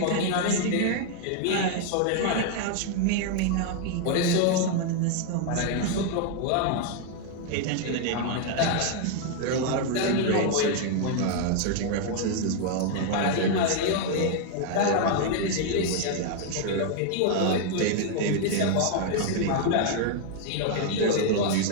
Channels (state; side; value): different; both; correlation 0.00